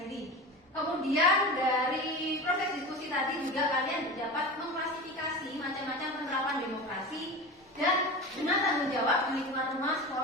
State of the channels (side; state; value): both; normal; correlation 0.29